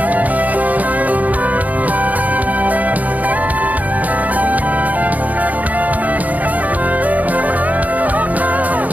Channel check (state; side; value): late; left; 0.075 ms